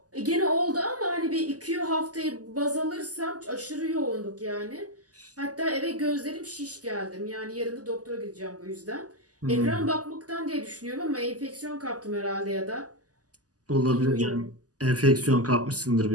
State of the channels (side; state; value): left; late; 0.67 ms